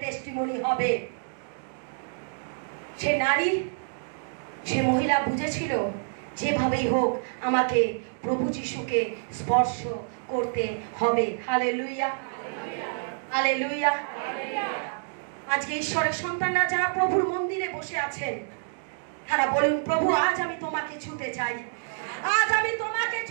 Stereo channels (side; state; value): left; silent; digital silence